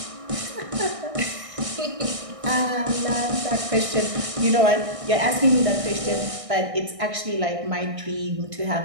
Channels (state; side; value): late; left; 1.6 ms